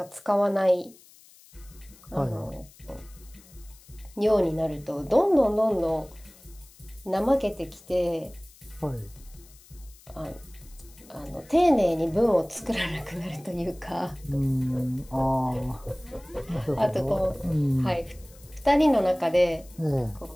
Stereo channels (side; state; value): left; noise; hiss, 24 dB below the sound